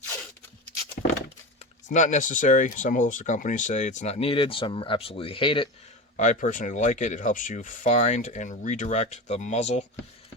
It's not necessary. Some holster companies say it's not needed, some absolutely hate it. I personally like it. It helps you find and redirect the muzzle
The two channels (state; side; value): normal; both; correlation 0.25